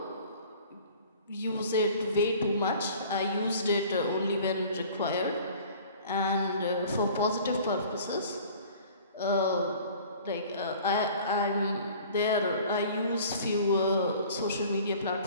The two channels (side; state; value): both; inverted; correlation -0.48